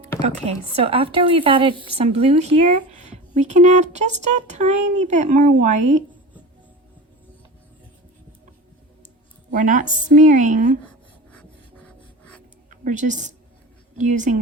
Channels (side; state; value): both; normal; correlation 0.31